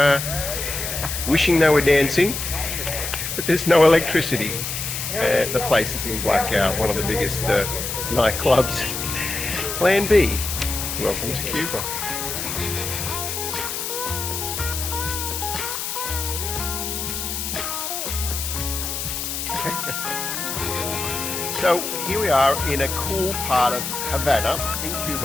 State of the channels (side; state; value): left; noise; hiss, 4 dB below the sound